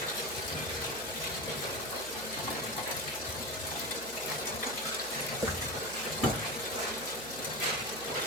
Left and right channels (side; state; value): right; noise; hum, 18 dB below the sound